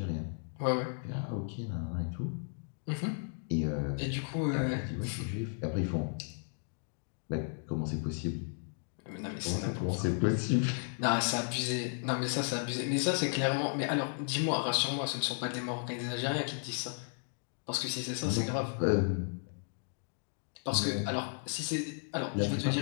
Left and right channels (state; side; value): silent; right; 55 dB below the other